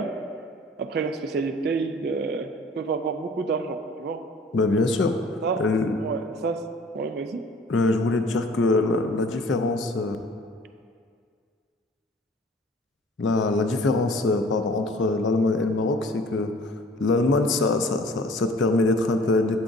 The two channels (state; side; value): normal; both; correlation 0.50